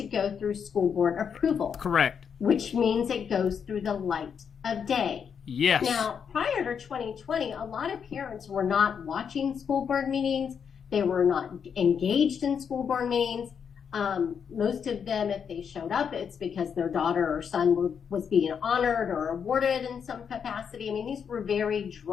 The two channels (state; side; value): quieter; right; 7.1 dB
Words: go through school board approval. Correct. Which means it goes through the light of day. Yes. Now, prior to 2020, a lot of parents were not watching school board meetings. They were not engaged in school board meetings. Most of them, if they showed up, it's because their daughter or son was being honored or awarded in some capacity. I mean, these were very